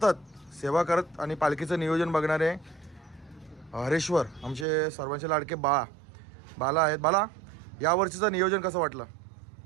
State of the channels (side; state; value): left; drops out; at 4.7 s